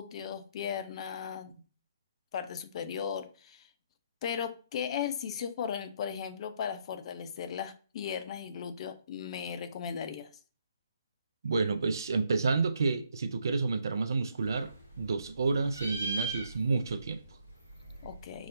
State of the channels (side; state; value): both; inverted; correlation -0.72